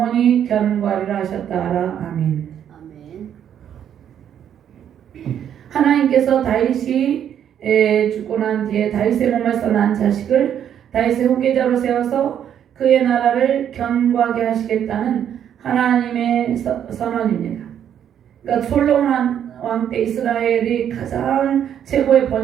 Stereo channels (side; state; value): left; quieter; 9.4 dB